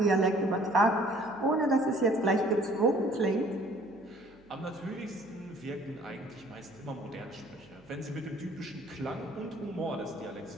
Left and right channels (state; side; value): noise; right; hum, 28 dB below the sound